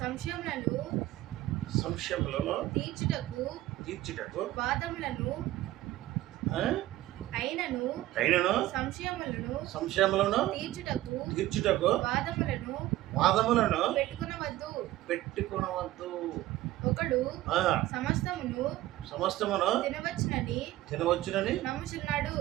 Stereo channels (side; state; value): left; quieter; 15.7 dB